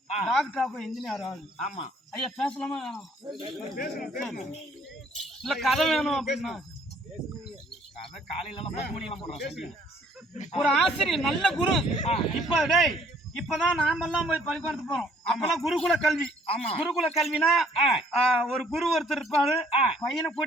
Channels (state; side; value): normal; both; correlation 0.61